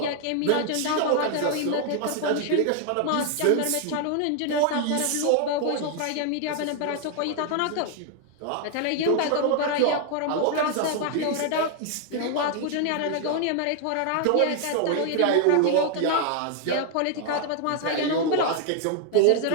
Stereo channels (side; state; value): both; different; correlation 0.00